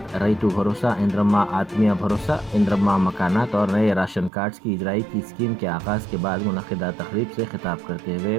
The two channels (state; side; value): drops out; left; at 4.3 s